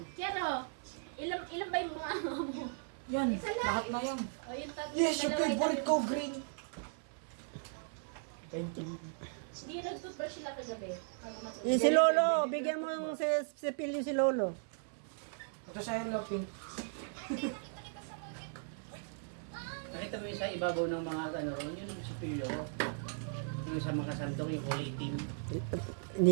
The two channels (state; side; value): silent; left; 53 dB below the other